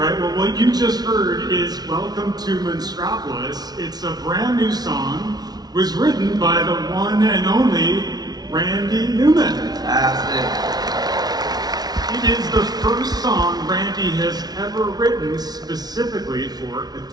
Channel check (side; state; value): left; late; 0.19 ms